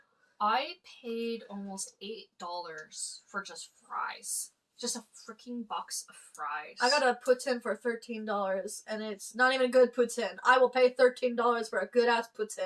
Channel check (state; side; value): identical; both; correlation 1.00